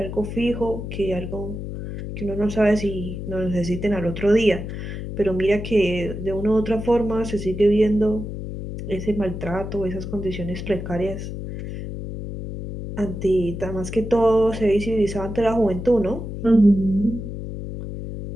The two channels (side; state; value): left; noise; hum, 7 dB below the sound